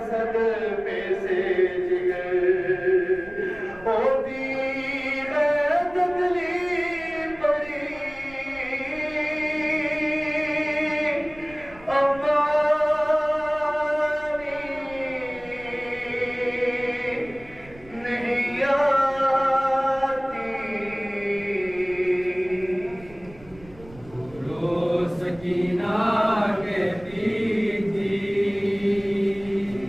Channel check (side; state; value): right; noise; rumble, 21 dB below the sound